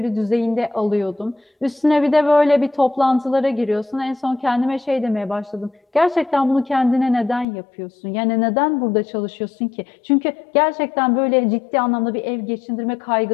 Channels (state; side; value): drops out; right; at 7.5 s